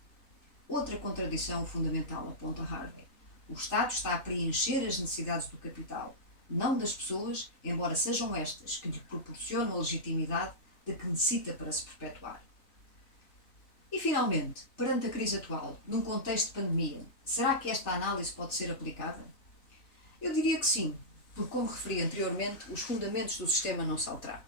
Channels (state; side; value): late; right; 3.4 ms